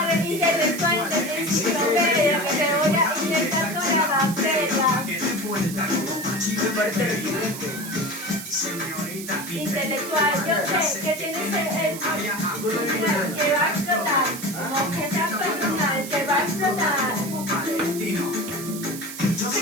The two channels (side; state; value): right; noise; hiss, 11 dB below the sound